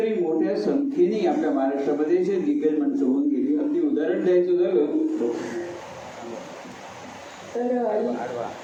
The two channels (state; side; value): identical; both; correlation 1.00